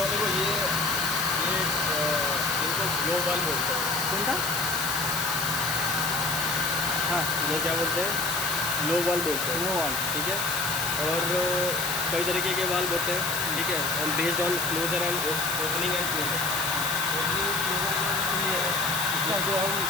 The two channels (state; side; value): noise; left; hiss, 2 dB below the sound